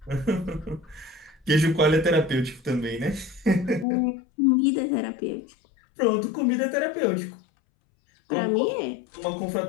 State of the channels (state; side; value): drops out; right; at 3.9 s